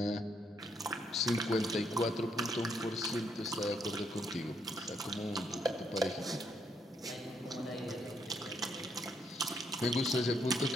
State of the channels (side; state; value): both; normal; correlation 0.73